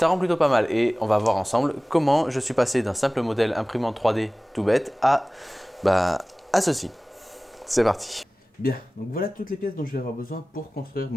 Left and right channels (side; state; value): both; normal; correlation 0.98